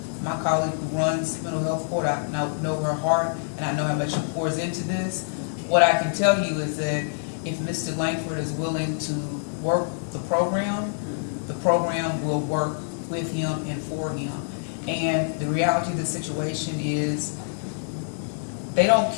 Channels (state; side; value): silent; right; digital silence